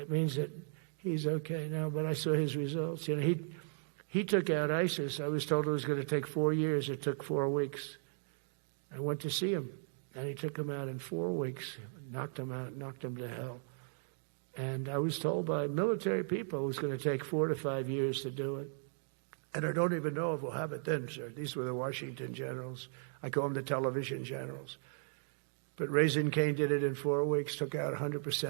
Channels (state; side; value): silent; left; digital silence